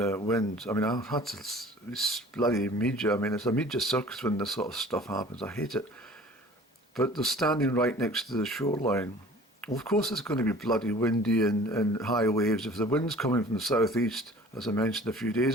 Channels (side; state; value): both; normal; correlation 0.47